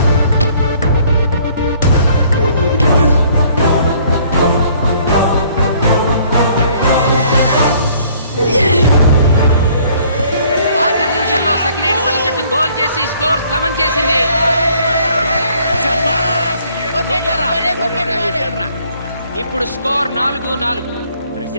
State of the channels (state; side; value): inverted; both; correlation -0.60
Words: స్కోర్ సమం చేసింది. ఇప్పుడు స్కోర్ 4-4.